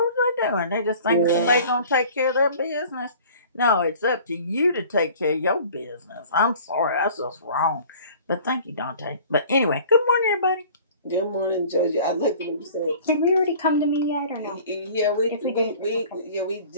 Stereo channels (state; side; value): inverted; both; correlation -0.47